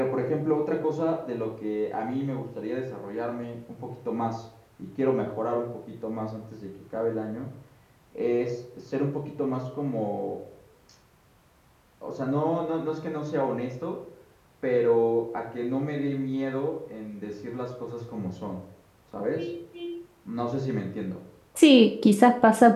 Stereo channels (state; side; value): identical; both; correlation 1.00